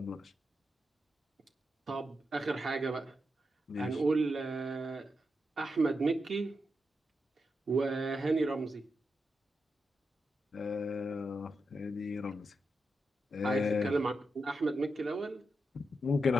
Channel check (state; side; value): normal; both; correlation 0.86